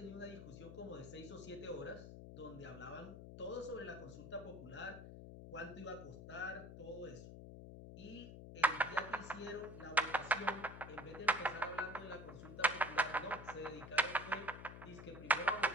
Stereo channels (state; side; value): noise; left; hum, 12 dB below the sound